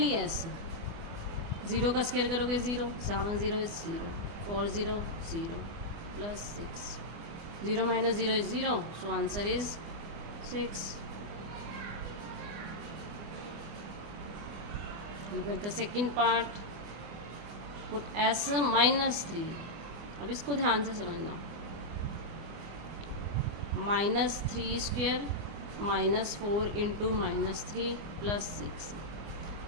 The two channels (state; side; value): late; left; 24 ms